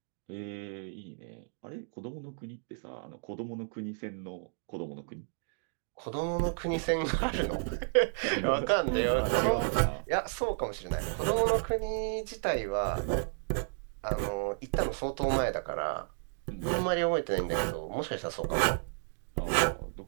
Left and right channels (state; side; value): silent; left; digital silence